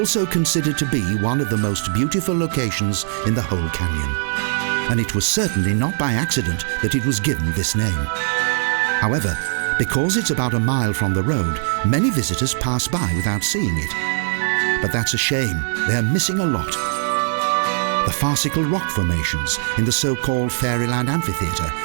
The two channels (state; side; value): silent; left; 65 dB below the other